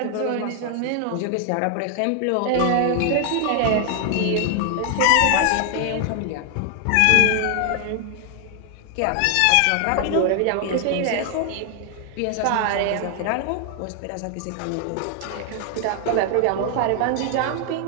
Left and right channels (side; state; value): both; different; correlation 0.00